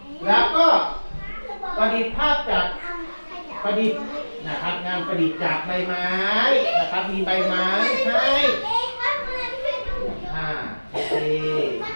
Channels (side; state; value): both; inverted; correlation -1.00